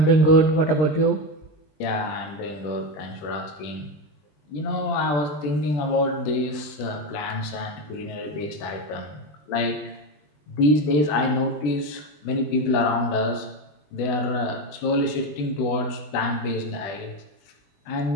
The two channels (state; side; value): late; right; 20 ms